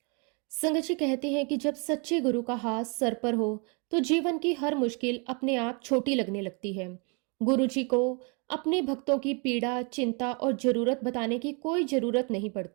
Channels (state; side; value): quieter; left; 34.0 dB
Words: संगत जी कहते हैं कि जब सच्चे गुरु का हाथ सर पर हो तो जीवन की हर मुश्किल अपने आप छोटी लगने लगती है। गुरुजी को अपने भक्तों की पीड़ा, चिंता और जरूरत बताने की कोई जरूरत नहीं